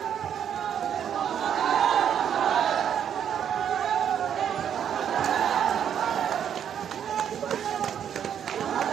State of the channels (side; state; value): left; quieter; 8.9 dB